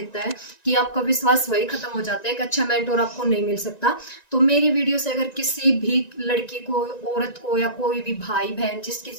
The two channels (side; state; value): right; late; 1.9 ms